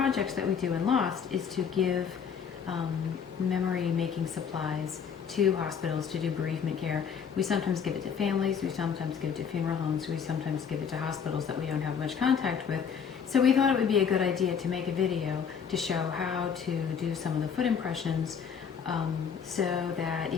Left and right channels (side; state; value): right; quieter; 7.0 dB